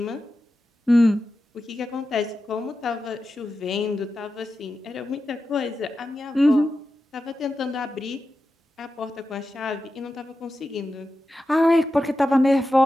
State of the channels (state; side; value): normal; both; correlation 0.91